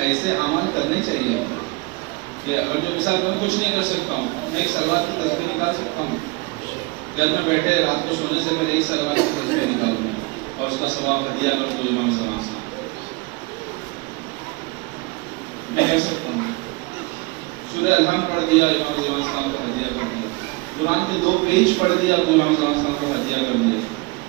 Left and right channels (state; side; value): quieter; left; 25.2 dB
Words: ایسے عمل کرنے چاہیے آپ کہ اگر جو مثال میں کچھ نہیں کر سکتا ہوں, میں ایک سلوات کی تصویر نکال سکتا ہوں. گھر میں بیٹھے رات کو سونے سے پہلے ایک سلوات کی تصویر نکالوں گا اور اس کا ثواب ہدیہ کر دو امام زمان سے. میں کر سکتا ہوں. سورہ الحمد پڑھ دیا, امام زمان السلام کو ہدیہ کر دیا. قرآن کے 2 پیج پڑھ دیا, امام زمان السلام کو ہدیہ کر دیا.